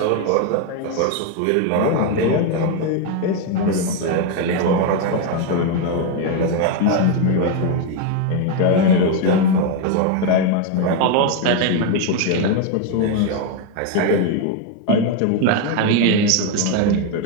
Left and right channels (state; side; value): different; both; correlation 0.01